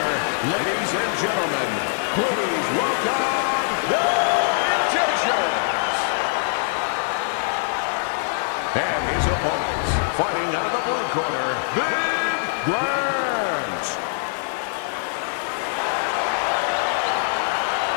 ladies and gentlemen, please welcome the Magicians. And his opponents, fighting out of the blue corner, the Grant.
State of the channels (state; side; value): silent; right; digital silence